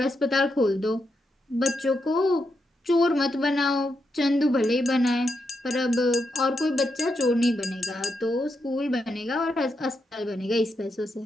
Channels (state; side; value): normal; both; correlation 0.83